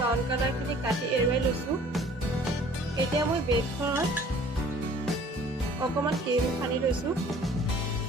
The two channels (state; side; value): normal; both; correlation 0.52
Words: কালাৰখিনি কাটি এৰুৱাই লৈছোঁ। এতিয়া মই ব্ৰেডখনত অকণমান ক্ৰীম সানি লৈছোঁ।